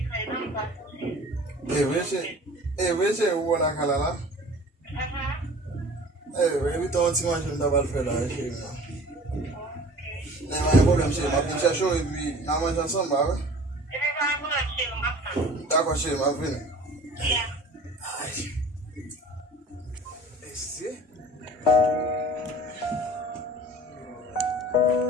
Veja o na calala. Every time you want to double fella, não é problema, cheio, mas puxa show e na manhã só vai. Tá com cheio, mas vem. Esse?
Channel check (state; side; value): normal; both; correlation 0.45